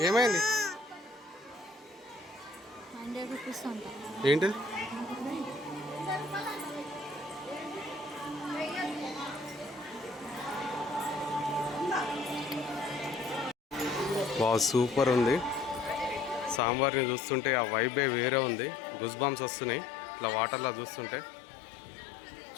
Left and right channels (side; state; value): right; drops out; at 16.6 s